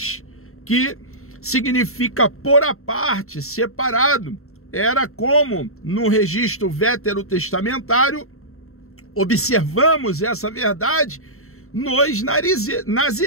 que significa pôr à parte, separado. Era como no registro veterotestamentário, observamos essa verdade nos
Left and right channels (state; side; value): late; right; 0.63 ms